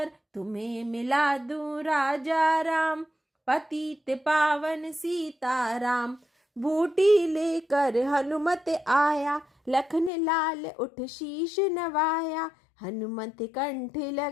तुम्हें मिला दूं राजा राम, पतित पावन सीताराम। बूटी लेकर हनुमत आया, लखन लाल उठ शीश नवाया, हनुमत कंठ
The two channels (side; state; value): right; drops out; at 10.1 s